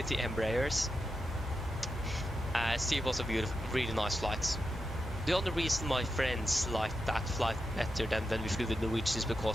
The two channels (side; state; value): both; normal; correlation 0.88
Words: the Embraers. Still was a beautiful, really nice flight. The only reason my friends liked that flight better than when we flew with Norwegian is